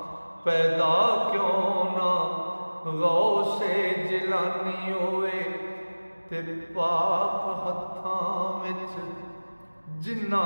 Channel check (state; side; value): inverted; both; correlation -1.00